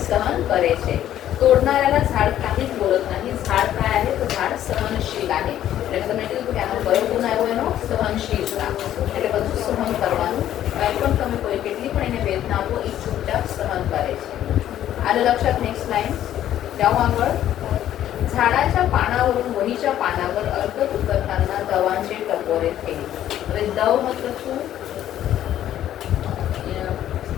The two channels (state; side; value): quieter; right; 11.8 dB